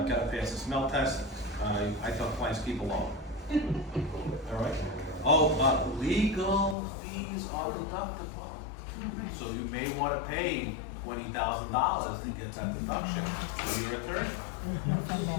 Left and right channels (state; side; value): drops out; right; at 6.8 s